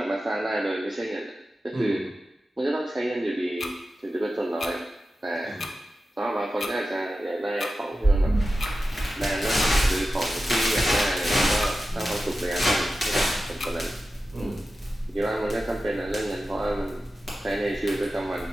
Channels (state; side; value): normal; both; correlation 0.93